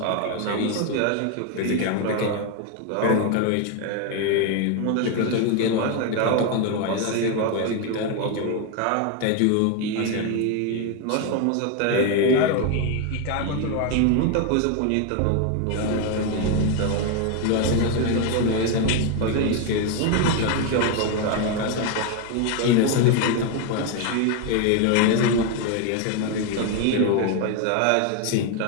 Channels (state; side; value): different; both; correlation 0.01